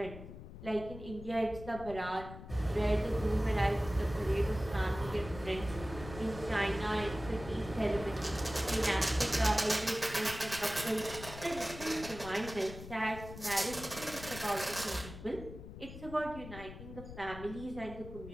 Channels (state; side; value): noise; left; rumble, 12 dB below the sound